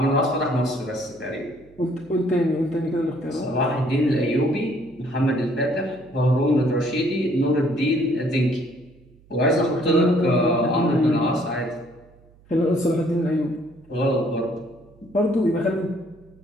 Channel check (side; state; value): right; noise; hum, 28 dB below the sound